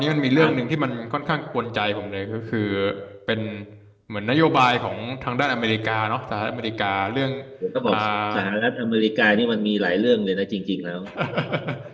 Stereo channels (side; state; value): both; identical; correlation 1.00